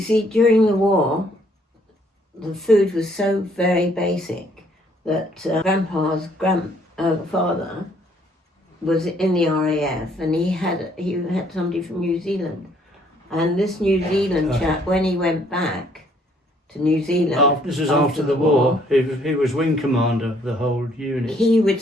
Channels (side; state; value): both; normal; correlation 0.65